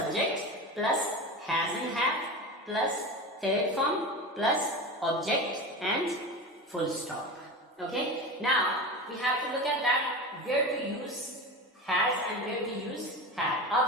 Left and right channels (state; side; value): normal; both; correlation 0.27